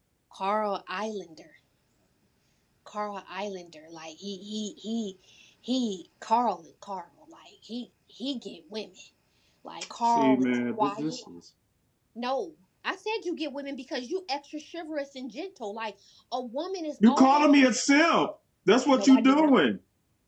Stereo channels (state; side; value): identical; both; correlation 1.00